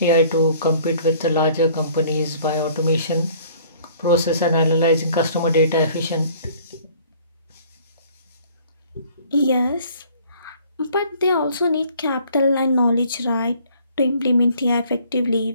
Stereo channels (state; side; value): inverted; both; correlation -0.56